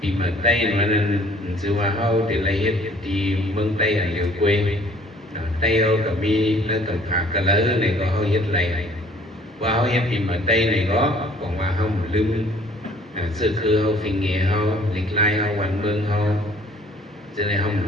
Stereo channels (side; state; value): both; normal; correlation 0.56